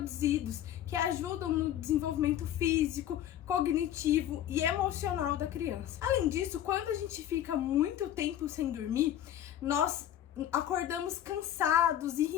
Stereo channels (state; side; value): quieter; right; 11.2 dB